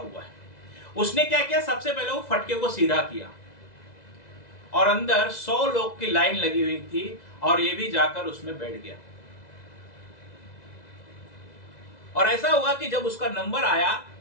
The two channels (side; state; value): right; late; 2.0 ms